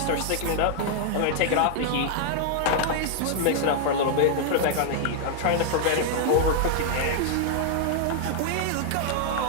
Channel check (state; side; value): different; both; correlation -0.01